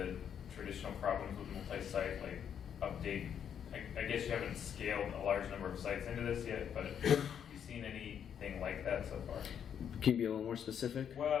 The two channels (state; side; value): quieter; right; 8.5 dB